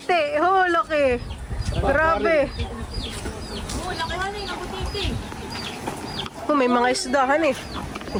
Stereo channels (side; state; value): both; identical; correlation 1.00